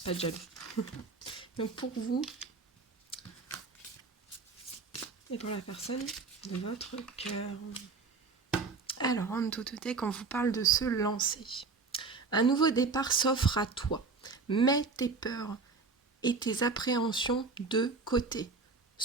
pas de jaloux. Donc pour vous et pour la personne de votre cœur. Alors en autotech, on vous parle de se lancer. Un nouveau départ s'offre à toi. Mets tes peurs et tes appréhensions de côté.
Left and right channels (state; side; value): quieter; left; 4.3 dB